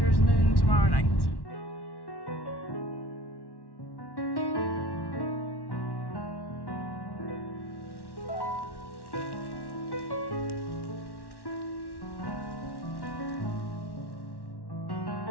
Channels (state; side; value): late; right; 1.1 ms